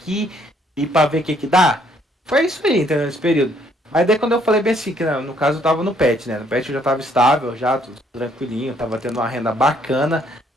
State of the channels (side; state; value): both; normal; correlation 0.66